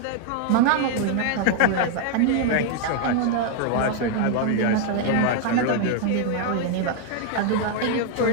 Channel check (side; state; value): both; different; correlation 0.00